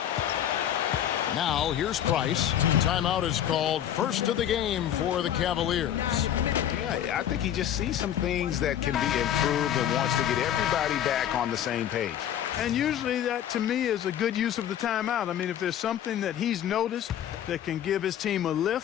Now here's Price. Timeout is called. First of the game for the Cavaliers. Yeah, I think he just sees some things that can be improved and wants to get everybody back on the same page. And usually that, to me, is a good use of the timeout. I mean, if there's something that he's noticed that can give his team a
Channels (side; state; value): right; quieter; 10.5 dB